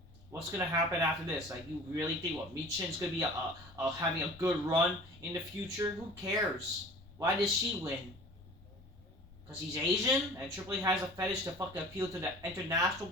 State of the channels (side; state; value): left; noise; rumble, 22 dB below the sound